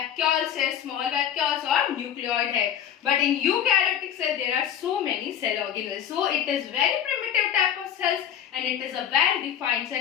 है, स्मॉल वैक्यूल्स और न्यूक्लियोइड है. But in eukaryotic cell there are so many cell organelles. So it is very primitive type of cells and it is a well defined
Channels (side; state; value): right; quieter; 9.6 dB